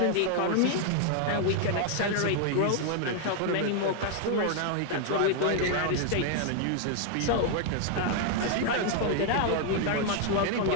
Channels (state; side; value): different; both; correlation 0.00